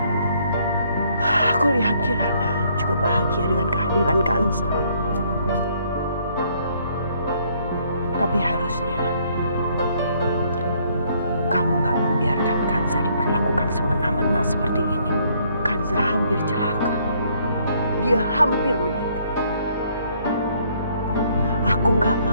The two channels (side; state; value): both; inverted; correlation -0.66